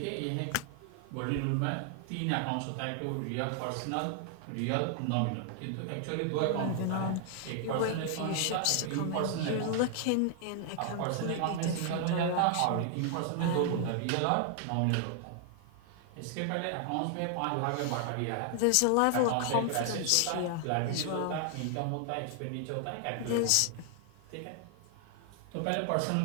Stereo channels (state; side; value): different; both; correlation 0.00